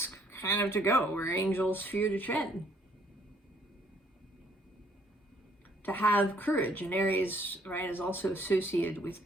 kind of to go where angels fear to tread. To have courage, and Aries, right, is also associated with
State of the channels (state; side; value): normal; both; correlation 0.64